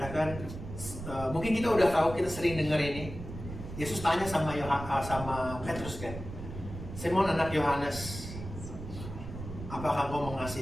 mungkin kita udah tahu, kita sering dengar ini. Yesus tanya sama Petrus kan, Simon anak Yohanes, apakah kau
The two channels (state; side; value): noise; right; rumble, 10 dB below the sound